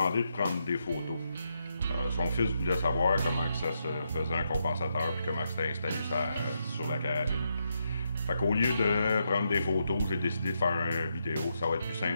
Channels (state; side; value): inverted; both; correlation -0.81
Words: de prendre des photos. Son fils voulait savoir comment que ça se faisait un compensateur puis comment c'était installé sur la carabine. Fait qu'au lieu de prendre des photos, j'ai décidé de faire une vidéo. Ça va être plus